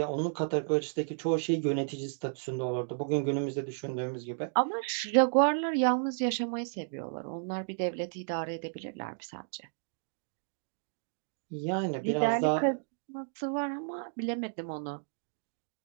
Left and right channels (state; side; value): silent; left; digital silence